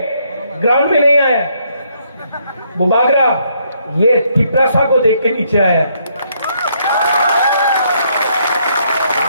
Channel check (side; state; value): both; inverted; correlation -0.71